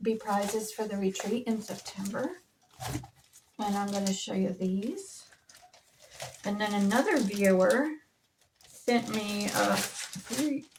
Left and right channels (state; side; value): identical; both; correlation 1.00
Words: be prizes for the retreat in September. And I'm going to show you these. And then another viewer sent me 2